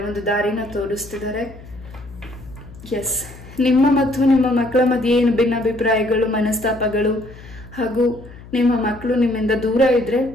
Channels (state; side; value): noise; left; hum, 18 dB below the sound